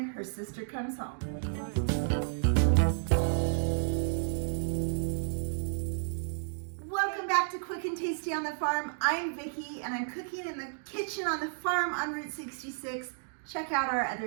her sister comes home. Welcome back to Quick and Tasty on the Farm. I'm Vicki and I'm cooking in the kitchen on the farm on Route 66. Check out our other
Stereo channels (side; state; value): left; silent; digital silence